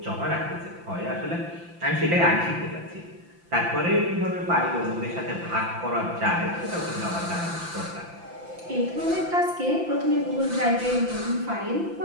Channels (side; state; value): left; late; 5.8 ms